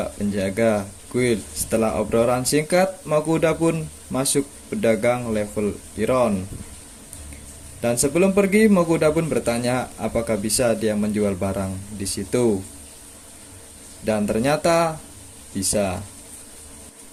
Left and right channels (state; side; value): identical; both; correlation 1.00